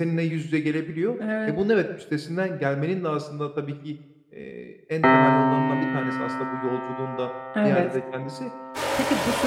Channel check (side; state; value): both; identical; correlation 1.00